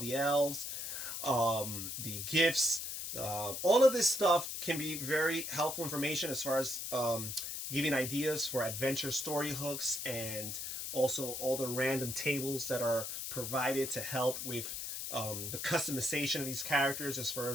elves, the gifts, All of this stuff can be very helpful information as far as giving ideas for adventure story hooks, and also all the random tables that are provided to help with the customization of these characters as far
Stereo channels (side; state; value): left; noise; hiss, 5 dB below the sound